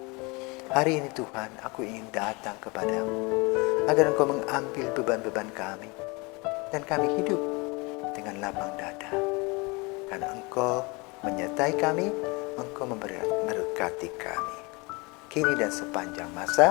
Hari ini Tuhan, aku ingin datang kepadamu, agar Engkau mengambil beban-beban kami, dan kami hidup dengan lapang dada. Karena Engkau menyertai kami, Engkau memberkati kami, kini dan sepanjang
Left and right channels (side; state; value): right; quieter; 27.2 dB